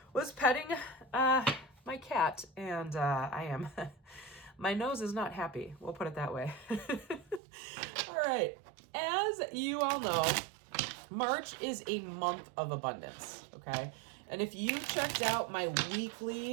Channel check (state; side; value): drops out; left; at 7.4 s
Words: was petting my cat, and I am, my nose is not happy. We'll put it that way. All right, as you all know, March is a month of abundance, okay? And if you checked out my